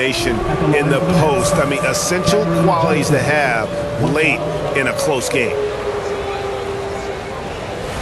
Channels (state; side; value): identical; both; correlation 1.00